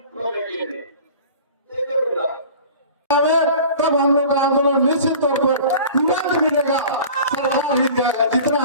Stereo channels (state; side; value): inverted; both; correlation -0.41